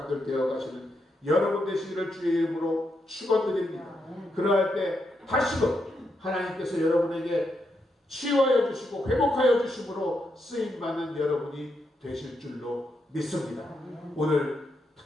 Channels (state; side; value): normal; both; correlation 0.82